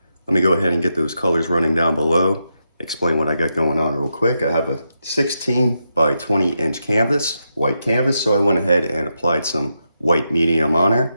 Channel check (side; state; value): both; inverted; correlation -0.85